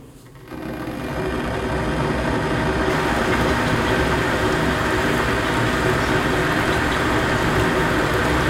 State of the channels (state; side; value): identical; both; correlation 1.00